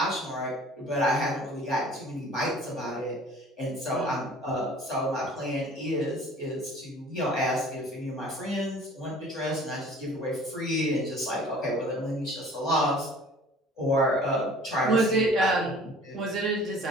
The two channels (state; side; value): normal; both; correlation 0.48